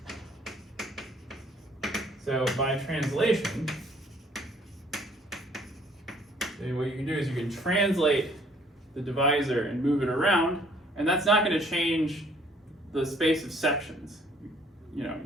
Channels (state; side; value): normal; both; correlation 0.60